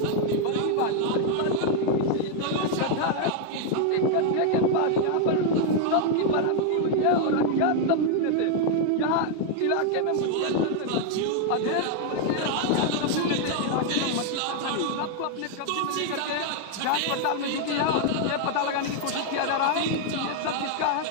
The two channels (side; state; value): both; different; correlation 0.00